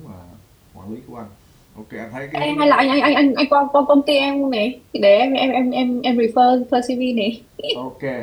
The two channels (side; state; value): both; identical; correlation 1.00